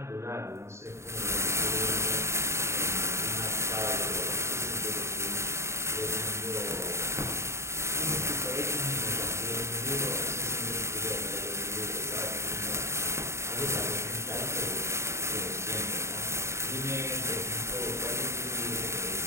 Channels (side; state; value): left; late; 0.13 ms